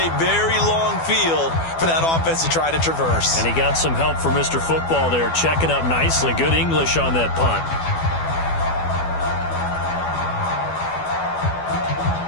very long field for that offense to try to traverse. And he got some help from Mr. Football there, checking up nicely. Good English on that punt.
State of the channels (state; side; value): late; right; 12 ms